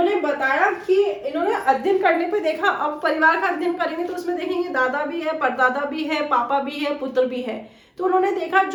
बताया कि इन्होंने अध्ययन करने पे देखा, अब परिवार का अध्ययन करेंगे तो उसमें देखेंगे दादा भी है, परदादा भी है, पापा भी है, पुत्र भी है। तो उन्होंने देखा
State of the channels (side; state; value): both; identical; correlation 1.00